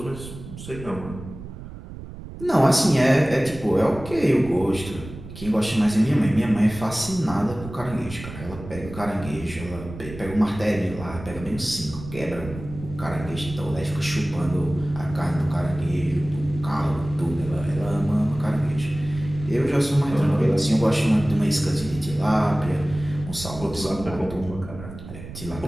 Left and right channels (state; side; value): noise; right; rumble, 13 dB below the sound